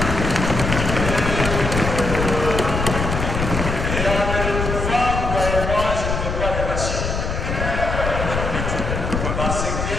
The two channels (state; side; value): noise; left; rumble, 2 dB below the sound